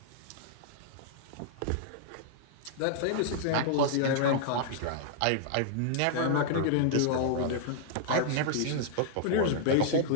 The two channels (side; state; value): both; different; correlation -0.01